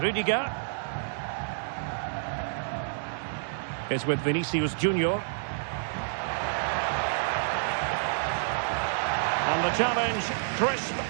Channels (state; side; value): silent; left; digital silence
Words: Rudiger. Is with Vinicius Junior. And the challenge, crisp